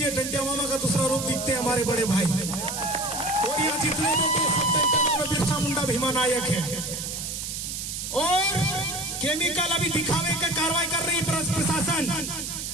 टेंटिया मामा का दूसरा रूप दिखते हैं हमारे बड़े भाई। और अभी जितने बेटे सब सेंटर में बिरसा मुंडा भीमा नायक है, और केमिकल अभी दिखावे का कार्रवाई कर रही प्रशासन।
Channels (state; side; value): noise; right; hiss, 5 dB below the sound